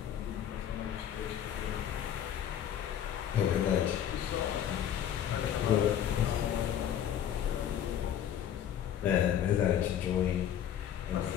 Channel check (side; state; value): right; quieter; 10.0 dB